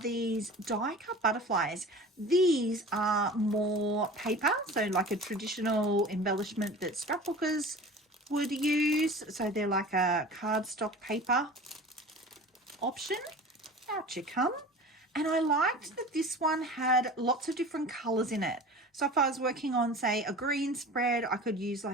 die cut butterflies. These are more paper, so like a traditional embellishment that scrapbookers would use. So they're like a cardstock paper option. Out you come. And I liked that this one had lots of different colors in it. So if I was working on, say, a green spread, I could use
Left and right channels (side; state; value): both; normal; correlation 0.39